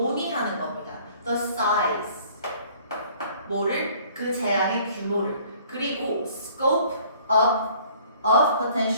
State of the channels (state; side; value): inverted; both; correlation -0.55